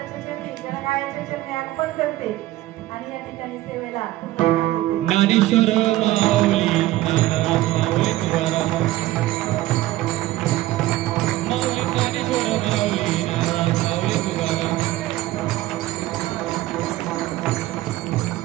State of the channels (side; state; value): left; quieter; 16.2 dB